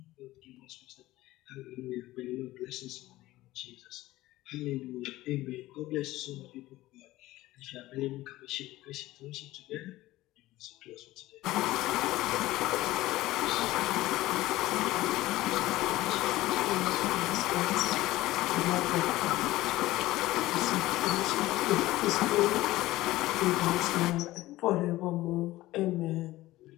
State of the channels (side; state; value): right; quieter; 17.2 dB